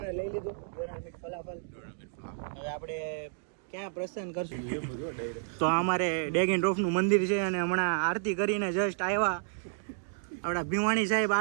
લઈ લીધું. ફલાફલ. હવે આપણે ક્યાં પ્રસ્થાન કરશું? તો અમારે ડેગ એન્ડ ડ્રોપ નું મંદિર છે અને હમણાં આરતી કરીને જસ્ટ આવ્યા. આપણા ભીમાણી સાહેબ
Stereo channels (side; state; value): left; silent; digital silence